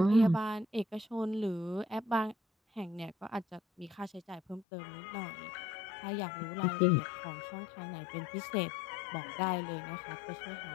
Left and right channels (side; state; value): right; drops out; at 4.7 s